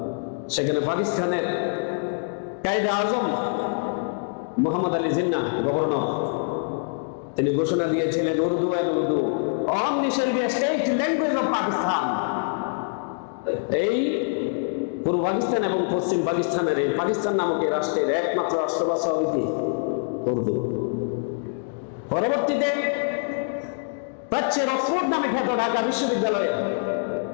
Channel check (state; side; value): silent; right; 62 dB below the other